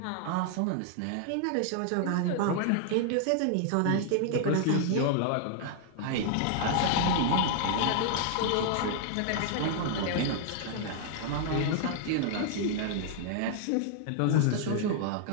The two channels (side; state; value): both; different; correlation 0.00